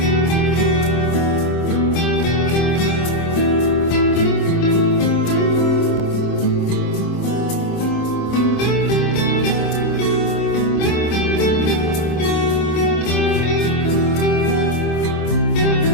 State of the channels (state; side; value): late; right; 25 ms